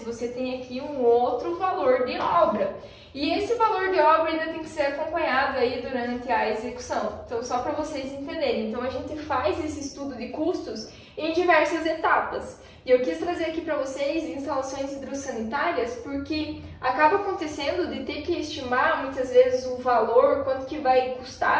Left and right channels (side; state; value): both; identical; correlation 1.00